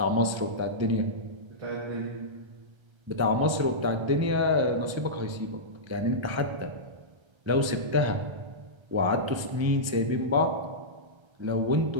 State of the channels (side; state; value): left; late; 1.3 ms